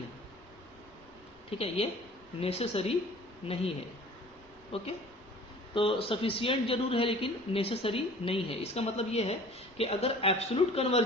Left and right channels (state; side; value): normal; both; correlation 0.47